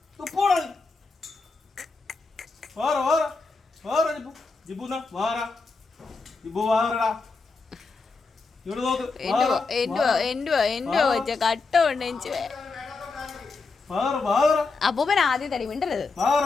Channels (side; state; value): right; quieter; 4.1 dB